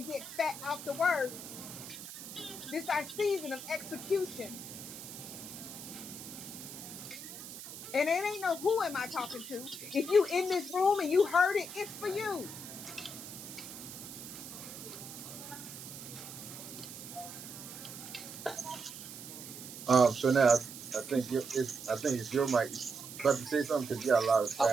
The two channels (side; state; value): right; noise; hiss, 11 dB below the sound